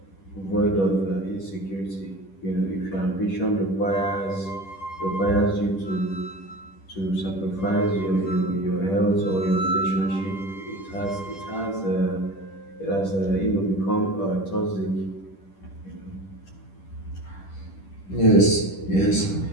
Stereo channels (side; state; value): right; late; 10 ms